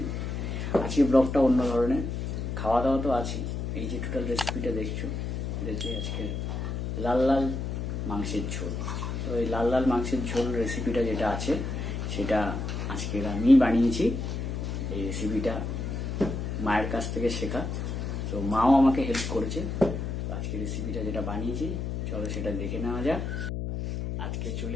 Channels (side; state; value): left; noise; hum, 3 dB below the sound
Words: আজকে ব্লগটা অন্য ধরনের, খাওয়া দাওয়া তো আছে। এই যে টোটাল রেসিপিটা দেখছো, আজকে লাল লাল মাংসের ঝোল। তো এই লাল লাল মাংসের ঝোল রেসিপিটা যেটা আছে সেটা আজকে আমি বানিয়েছি। এই রেসিপিটা মায়ের কাছ থেকে শেখা, তো মাও আমাকে হেল্প করেছে। আজকে রেসিপিটা যেটা বানিয়েছি, চলো সেটা দেখে নেওয়া যাক। আজকে চলে